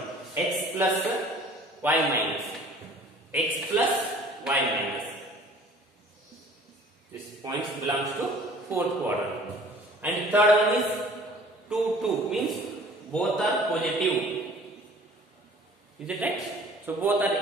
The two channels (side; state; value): both; normal; correlation 0.50